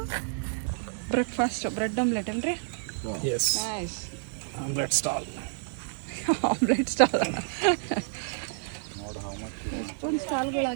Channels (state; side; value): silent; left; digital silence